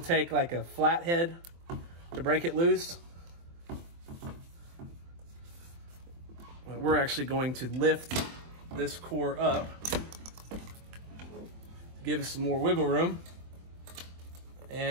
like a flathead to break it loose. But we're actually going to lift this core up, give us some more wiggle room,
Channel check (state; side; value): late; left; 24 ms